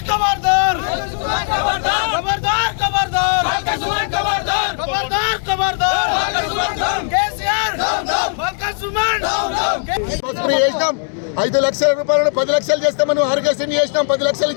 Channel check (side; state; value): right; silent; 60 dB below the other